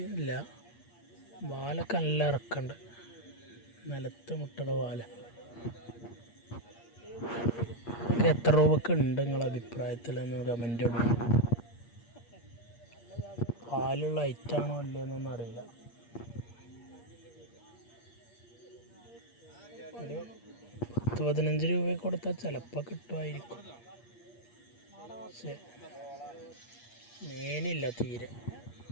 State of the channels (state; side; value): late; right; 8.5 ms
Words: ഇല്ല, വാലൊക്കെ നല്ല ഇറക്കുണ്ട്, നിലത്ത് മുട്ടയുടെ വാല. ഇതൊക്കെ എത്ര രൂപക്ക് ഉണ്ട് നിങ്ങളുടെ അഭിപ്രായത്തിൽ എന്ന് കമൻ്റ് ഇടും. പാലുള്ള ഐറ്റാണോ അല്ലേന്നൊന്നും അറിയില്ല. ഒരു 10-15 രൂപ കൊടുത്താൽ ചിലപ്പോൾ കിട്ടുമായിരിക്കും. പക്ഷേ മേനില്ല തീരെ.